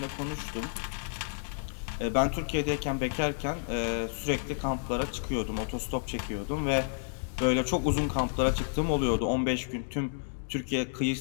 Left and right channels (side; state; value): right; silent; digital silence